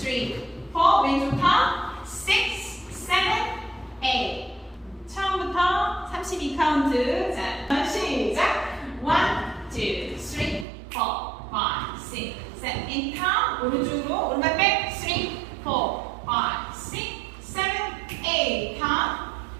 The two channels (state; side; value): drops out; left; at 10.7 s